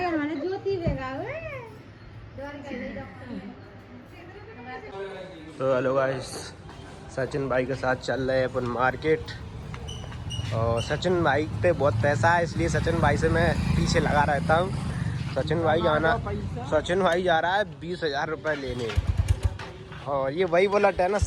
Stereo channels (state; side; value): identical; both; correlation 1.00